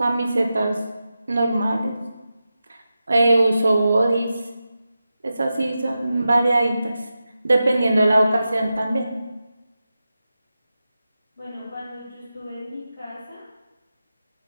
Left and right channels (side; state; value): both; inverted; correlation -0.91